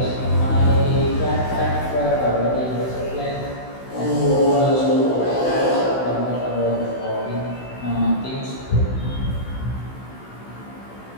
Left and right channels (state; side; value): late; right; 16 ms